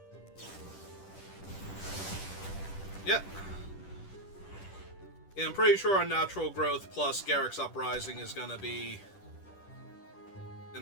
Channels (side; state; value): right; late; 10 ms